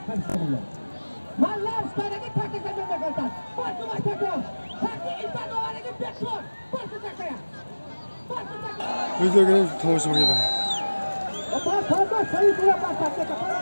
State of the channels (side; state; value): both; inverted; correlation -1.00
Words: Mallar üstlerine takip edilmek olacak. Başına takım. Takip insan olanı bekliyor. Başına takaya. Başına takaya. Videoga tomosha qildim. Parda sayı kula başlatacak.